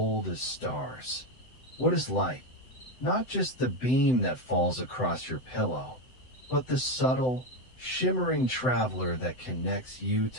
as stars. What is light? Not just the beam that falls across your pillow, but the subtle, shimmering traveler that connects you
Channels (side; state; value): right; late; 7.9 ms